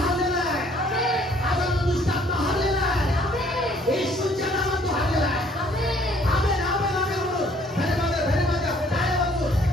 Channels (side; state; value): both; normal; correlation 0.60